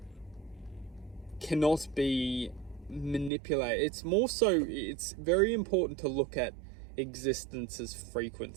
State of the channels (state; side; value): drops out; left; at 3.3 s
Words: cannot be manipulated. It's very important to look at existence's